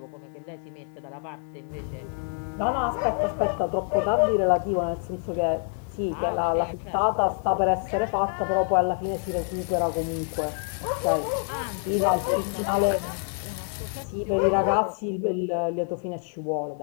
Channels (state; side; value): silent; right; 57 dB below the other